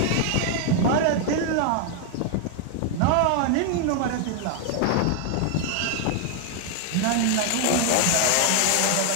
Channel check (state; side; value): different; both; correlation 0.00